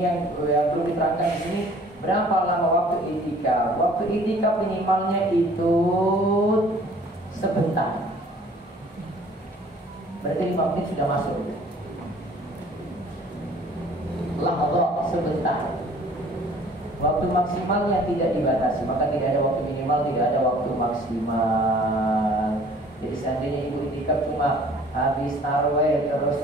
yang perlu diterangkan di sini. Berapa lama waktu iktikaf? Waktu iktikaf minimalnya itu sebentar. Berarti 5 menit sudah masuk. Allah sebentar. Waktu maksimal yang tidak dibatasi, maka tidak ada waktu minimal, tidak ada waktu maksimal. Jadi seandainya ibu itikaf cuma habis tarawih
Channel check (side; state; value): both; normal; correlation 0.53